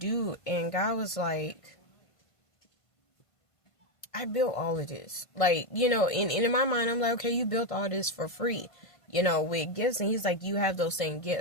And God was like, I built all of this. Like, in my mind, I'm like, okay, you built all this for free, with gifts. And he's like, you have those same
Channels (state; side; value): late; right; 1.5 ms